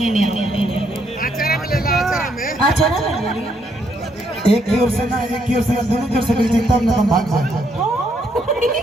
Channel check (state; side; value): normal; both; correlation 0.73